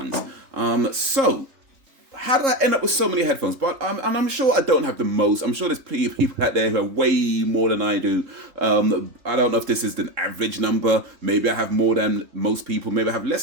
So how did I end up with so many headphones? But I'm sure I don't have the most. I'm sure there's plenty of people out there who have way more than I do. I don't know if this is the average number. Maybe I have more than most people. Maybe I have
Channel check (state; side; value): late; left; 3.3 ms